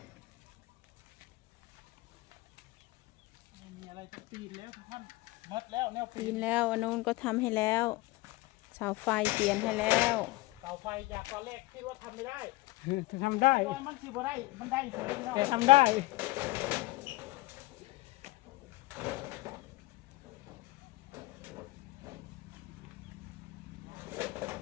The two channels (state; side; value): quieter; right; 20.3 dB